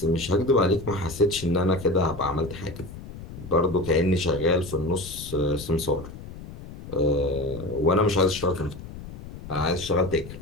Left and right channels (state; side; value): noise; left; rumble, 13 dB below the sound